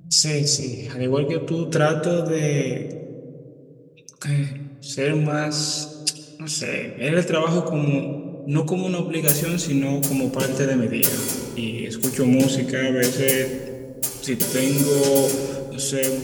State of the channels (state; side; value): identical; both; correlation 1.00